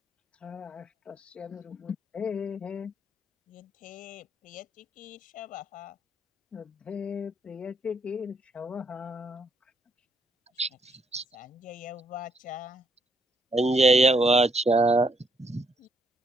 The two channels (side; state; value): both; normal; correlation 0.72